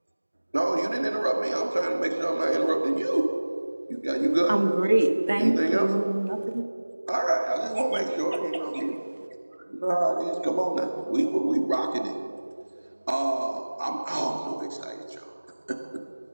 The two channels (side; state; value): both; inverted; correlation -1.00